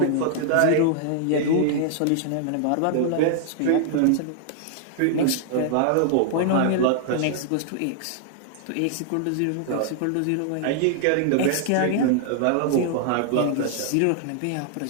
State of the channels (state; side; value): different; both; correlation 0.00